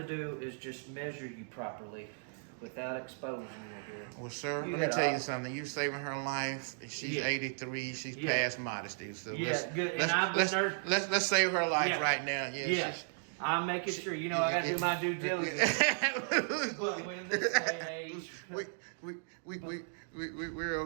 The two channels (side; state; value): left; silent; digital silence